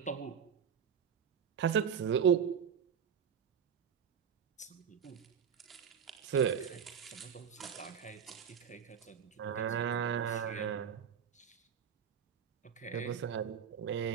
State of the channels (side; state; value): left; quieter; 7.5 dB